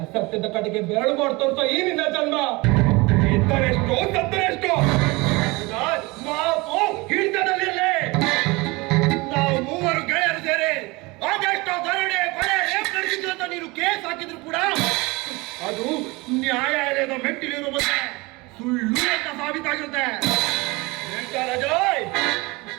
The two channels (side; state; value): left; quieter; 24.2 dB